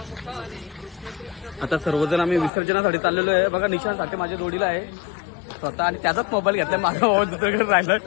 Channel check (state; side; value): drops out; right; at 2.5 s